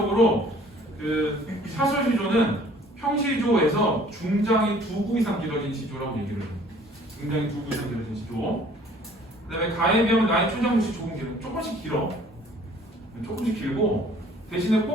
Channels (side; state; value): both; normal; correlation 0.54